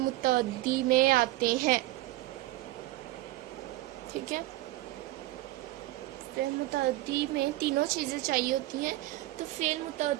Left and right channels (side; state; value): left; quieter; 17.3 dB